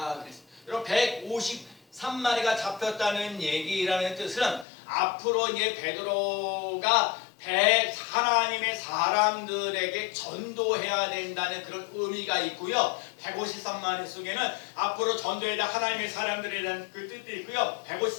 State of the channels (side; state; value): right; drops out; at 4.7 s